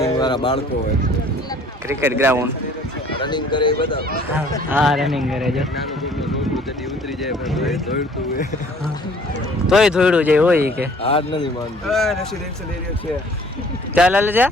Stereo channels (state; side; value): normal; both; correlation 0.55